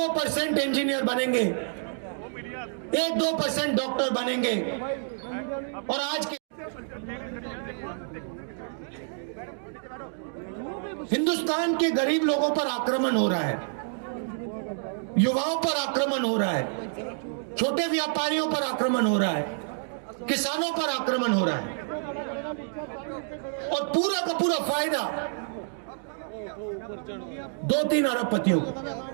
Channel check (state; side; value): silent; left; digital silence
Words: इंजीनियर बनेंगे, 1-2% डॉक्टर बनेंगे। और आज के हिंदुस्तान के गरीब लोगों पर आक्रमण हो रहा है, युवाओं पर आक्रमण हो रहा है, छोटे व्यापारियों पर आक्रमण हो रहा है, किसानों पर आक्रमण हो रहा है, और पूरा का पूरा फायदा 2-3 अरबपतियों को।